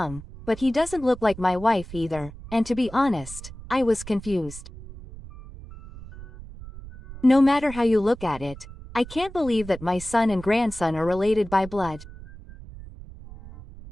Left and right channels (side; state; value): right; noise; rumble, 15 dB below the sound